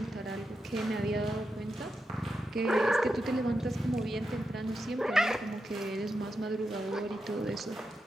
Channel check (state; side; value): normal; both; correlation 0.87